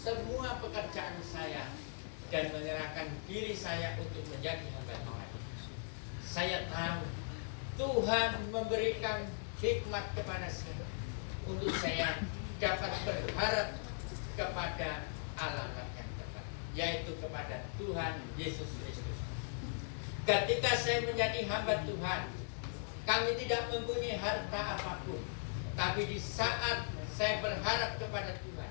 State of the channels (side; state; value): right; silent; 52 dB below the other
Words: pekerjaan saya dan menyerahkan diri saya untuk menjadi hamba Tuhan. Saya tahu Tuhan memberikan hikmat kepada saya untuk saya dapat berharap kepada alamat yang tepat, yaitu kepada Tuhan Yesus Kristus. Ketika saya menjadi hamba Tuhan, kami tidak mempunyai harta apapun, tapi di saat saya berharap kepada Tuhan,